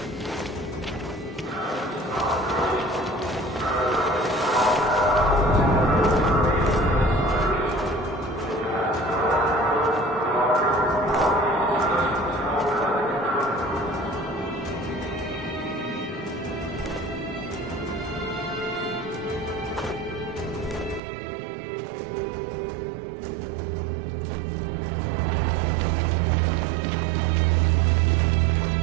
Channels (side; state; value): left; drops out; at 21.0 s